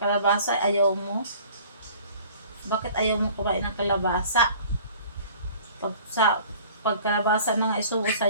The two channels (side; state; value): both; inverted; correlation -0.48